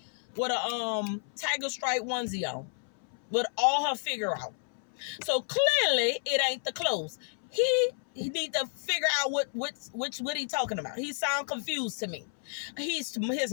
with a tiger stripe onesie on, with all her figure out. So clearly it ain't the clothes. He need to figure out what he talking about. He sound confused to me. His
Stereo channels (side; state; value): right; silent; 57 dB below the other